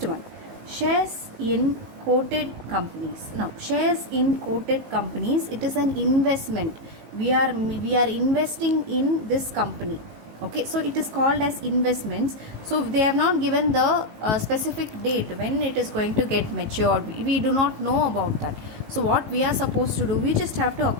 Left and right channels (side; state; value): left; late; 19 ms